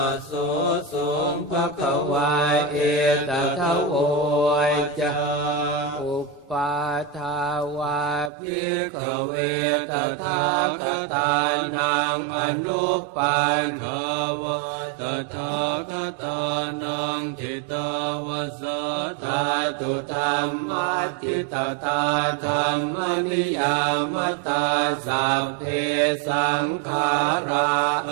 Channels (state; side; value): drops out; left; at 8.3 s